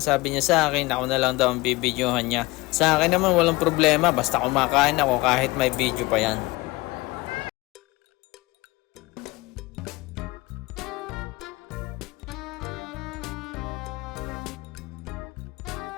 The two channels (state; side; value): quieter; right; 22.0 dB